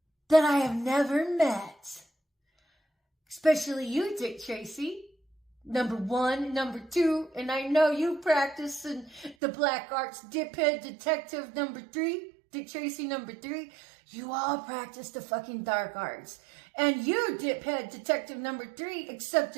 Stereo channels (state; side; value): drops out; left; at 9.3 s